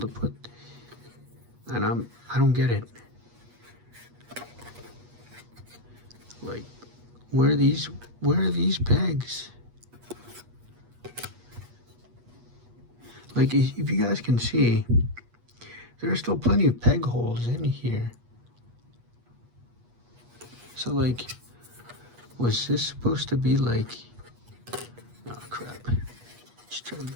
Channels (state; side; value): late; left; 8.3 ms